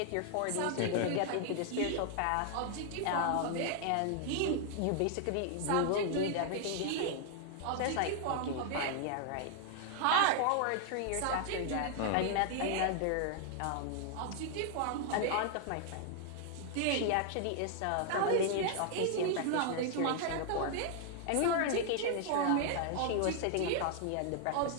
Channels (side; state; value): both; different; correlation 0.00